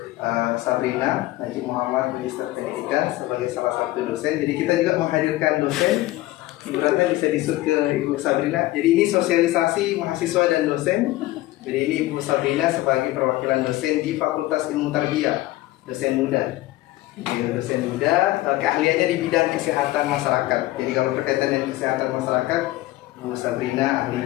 Sabrina Najib Muhammad, Magister Pendidikan sebagai salah satu dosen. Jadi kita juga menghadirkan dosen. Ibu Ratna bisa disut ke Ibu Sabrina. Jadi ini sosialisasi mahasiswa dan dosen. Jadi ini Ibu Sabrina sebagai perwakilan dosen di Fakultas Ilmu Tarbiyah, dosen muda. Dosen muda, keahliannya di bidang kesehatan masyarakat. Jadi kalau berkaitan dengan kesehatan masyarakat, Ibu Sabrina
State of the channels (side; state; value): right; quieter; 17.2 dB